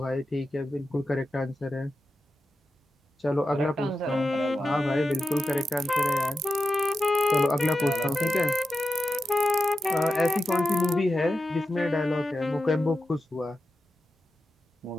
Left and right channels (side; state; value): both; normal; correlation 0.90